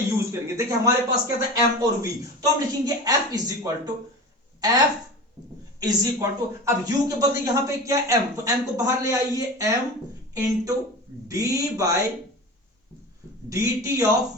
यूज करेंगे। देखिए हमारे पास क्या था, m और v, तो हम लिखेंगे f इज इक्वल टू, अब u के बदले यहां पे क्या m, तो m को बाहर ले आइए, m into d by d t of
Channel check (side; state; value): both; normal; correlation 0.32